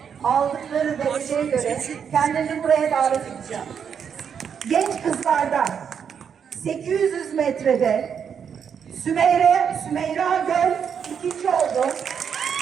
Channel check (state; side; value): quieter; left; 7.4 dB